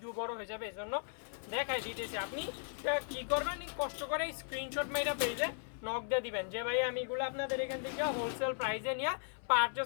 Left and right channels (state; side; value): silent; right; 53 dB below the other